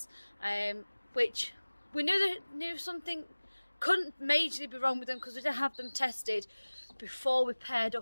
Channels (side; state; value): both; inverted; correlation -1.00